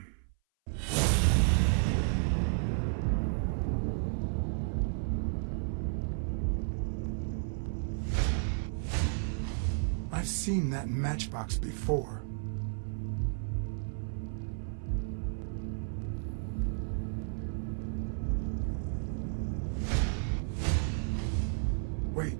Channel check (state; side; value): silent; left; 56 dB below the other